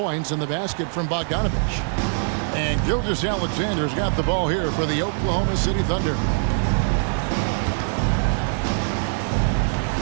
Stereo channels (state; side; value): silent; left; 56 dB below the other